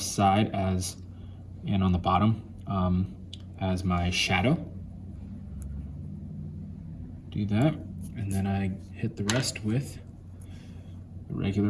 side as, and on the bottom as my shadow. Do that, and then I hit the rest with the regular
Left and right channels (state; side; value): identical; both; correlation 1.00